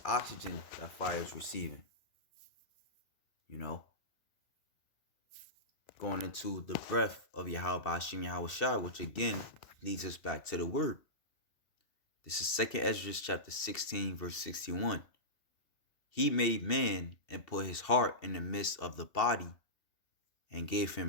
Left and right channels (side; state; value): right; late; 2.7 ms